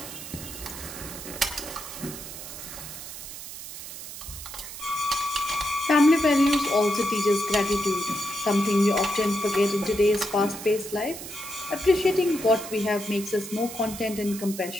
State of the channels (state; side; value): noise; right; hiss, 11 dB below the sound